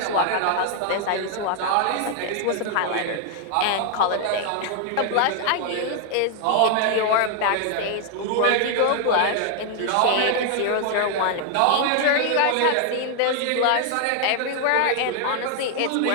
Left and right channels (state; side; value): different; both; correlation 0.00